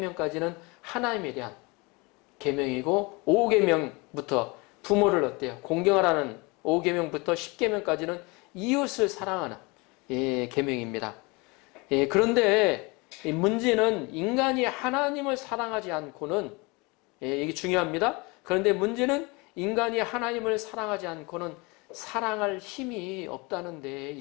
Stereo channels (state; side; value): quieter; right; 26.8 dB